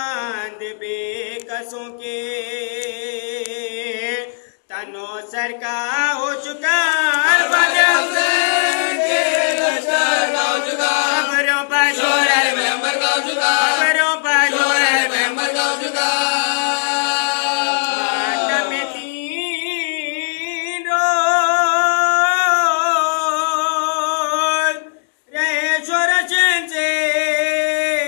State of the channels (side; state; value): right; silent; digital silence